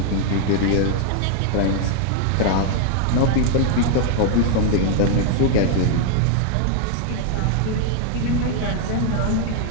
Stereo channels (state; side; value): different; both; correlation 0.00